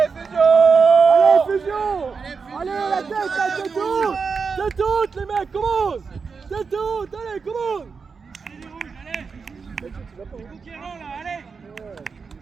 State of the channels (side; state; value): left; quieter; 5.2 dB